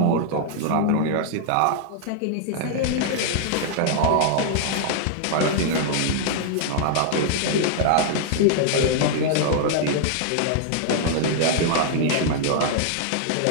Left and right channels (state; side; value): different; both; correlation -0.01